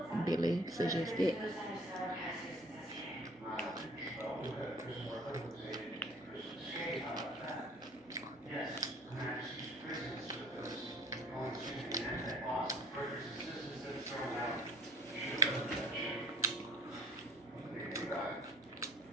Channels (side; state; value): both; normal; correlation 0.49